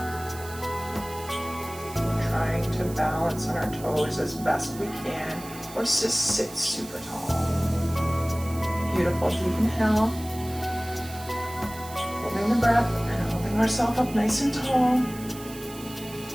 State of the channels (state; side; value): noise; right; hiss, 16 dB below the sound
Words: trying to balance on our toes as best we can, or just sit super tall. Beautiful. Deep inhale, holding the breath and holding ourselves up nice and tall.